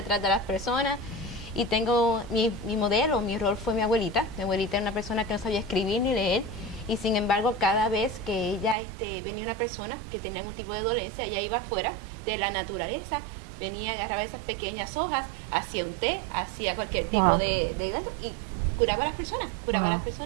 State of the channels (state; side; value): drops out; left; at 8.8 s